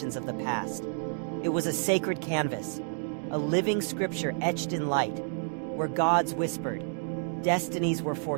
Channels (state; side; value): silent; left; 58 dB below the other